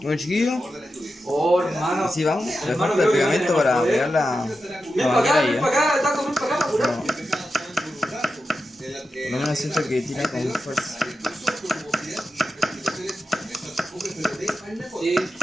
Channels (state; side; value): normal; both; correlation 0.90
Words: Bueno, chiquillos, así vamos. Le falta el pegamento para pegar la manguera ahí, Por lo menos siento que tira con fuerza. Sí,